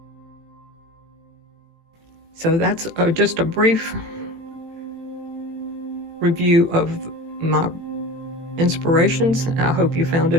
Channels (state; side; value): late; left; 18 ms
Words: So that's just a brief review of my inspirations. I hope you found